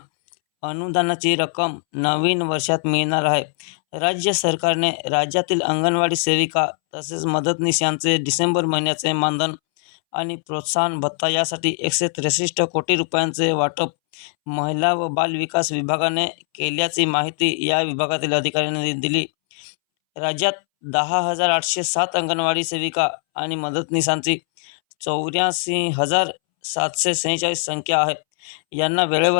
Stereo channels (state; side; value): silent; right; 64 dB below the other